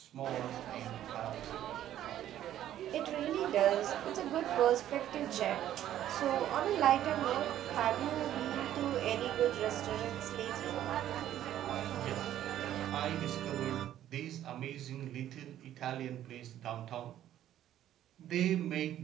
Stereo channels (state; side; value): quieter; left; 12.0 dB